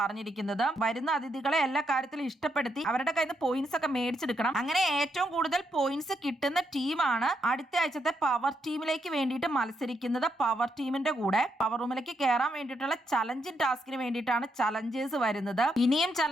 വരുന്ന അതിഥികളെ എല്ലാ കാര്യത്തിലും ഇഷ്ടപ്പെടുത്തി അവരുടെ കയ്യിൽ നിന്ന് പോയിന്റ്സ് ഒക്കെ മേടിച്ചെടുക്കണം. അങ്ങനെ ഏറ്റവും കൂടുതൽ പോയിന്റ്സ് കിട്ടുന്ന ടീമാണ് അടുത്ത ആഴ്ചത്തെ പവർ ടീമിലേക്ക് വേണ്ടിയിട്ട് മത്സരിക്കുന്നത്. പവർ ടീമിന്റെ കൂടെ പവർ റൂമിലേക്ക് കയറാൻ വേണ്ടിയിട്ടുള്ള ചലഞ്ചിങ് ടാസ്കിന് വേണ്ടിയിട്ടാണ് ചലഞ്ചേഴ്സ് വരുന്നത്. ഇനിയും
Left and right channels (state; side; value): normal; both; correlation 0.79